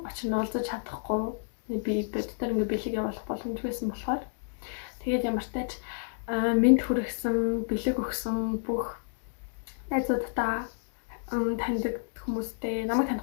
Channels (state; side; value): silent; right; digital silence